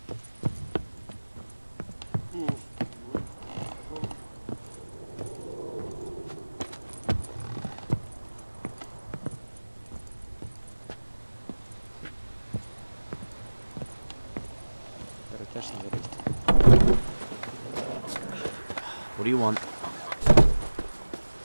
What do you want?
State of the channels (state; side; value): inverted; both; correlation -1.00